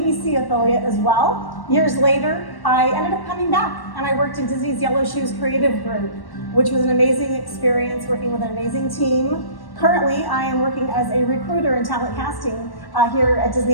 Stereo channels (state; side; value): late; right; 1.1 ms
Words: affiliate as well. Years later, I ended up coming back, and I worked in Disney's Yellow Shoes Creative Group, which was an amazing experience working with an amazing team. Currently, I am working as a recruiter in talent casting here at